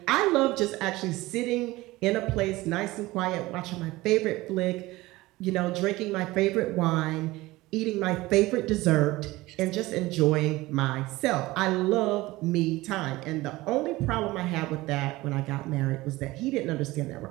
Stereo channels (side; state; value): left; quieter; 19.3 dB